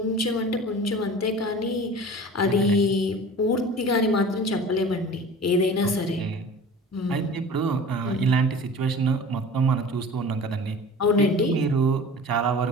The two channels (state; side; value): normal; both; correlation 0.39